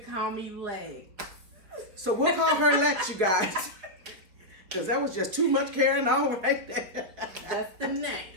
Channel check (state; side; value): late; left; 4.7 ms